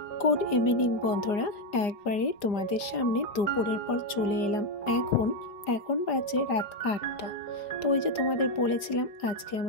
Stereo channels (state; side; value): late; right; 4.9 ms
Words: গুড ইভিনিং বন্ধুরা, একবারে তোমাদের সামনে দুপুরের পর চলে এলাম। এখন বাজে রাত 8টা। তো ওই যে তোমাদের বলেছিলাম আজকে